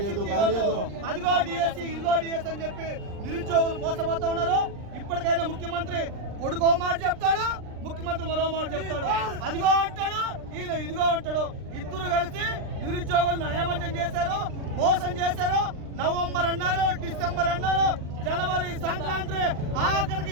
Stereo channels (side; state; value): left; late; 39 ms